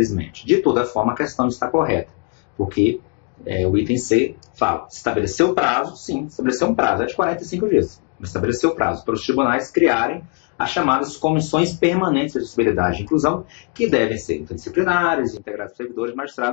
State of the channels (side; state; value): right; quieter; 31.6 dB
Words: De toda forma, a questão está correta, porque o item C fala, estabeleceu o prazo, sim, estabeleceu um prazo, é de 45 dias, estabeleceu o prazo para os tribunais criarem as chamadas comissões permanentes de acessibilidade e inclusão, que devem ser interdisciplinares, integradas por servidores e